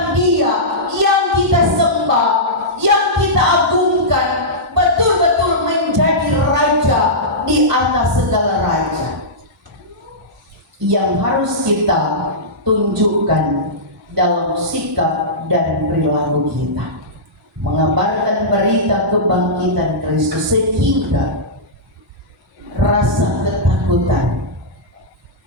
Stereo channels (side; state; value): both; normal; correlation -0.15